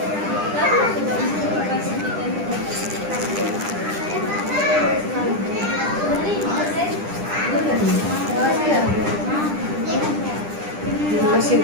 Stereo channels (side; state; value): left; late; 9.9 ms